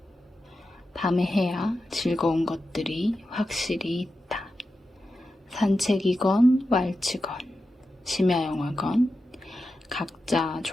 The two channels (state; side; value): normal; both; correlation 0.90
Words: 밤에 해야 즐거운 것들이 확실히 있다. 산책이건 왈츠건 심야영화건 각자